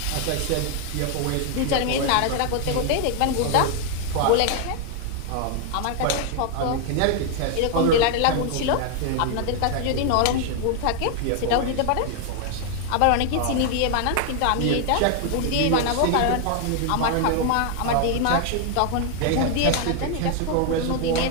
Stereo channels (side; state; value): both; different; correlation 0.00